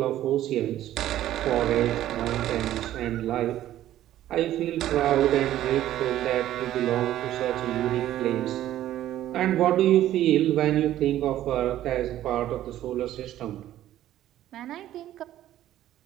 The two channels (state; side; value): quieter; left; 13.0 dB